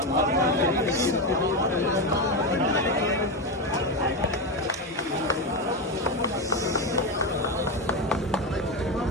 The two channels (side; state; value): both; normal; correlation 0.13